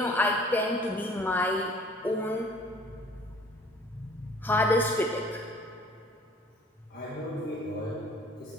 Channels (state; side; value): normal; both; correlation 0.53